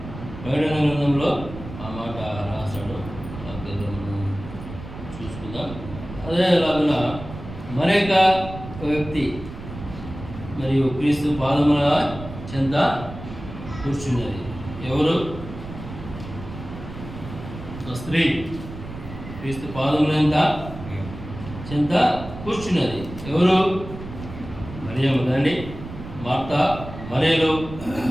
ప్రకటన గ్రంథంలో ఆ మాట రాశాడు. మనం చూసుకుందాం. అదేలాగా మరొక వ్యక్తి మరియు క్రీస్తు పాదముల చెంత కూర్చున్నది. ఎవరు? స్త్రీ క్రీస్తు పాదముల చెంత కూర్చున్నది. ఎవరు? మరియమ్మ కదండి. మార్తా, మరియలు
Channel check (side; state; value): right; noise; rumble, 12 dB below the sound